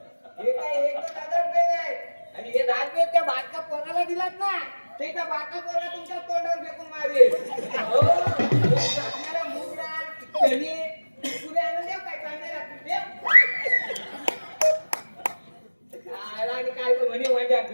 हे काय एक 1000 रुपये नाही आणि हे 10 रुपये त्या बाटका पोराला दिलात ना ते त्या बाटका पोरा तुमच्या तोंडावर फेकून मारेल हो आपल्याला मूग डाळ चणे पुरे आणून देऊ काय कांदे लागतील ते काय आणि काय तो म्हणे माझ्या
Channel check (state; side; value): inverted; both; correlation -1.00